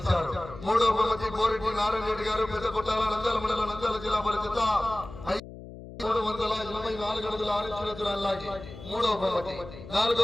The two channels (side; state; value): left; noise; hum, 14 dB below the sound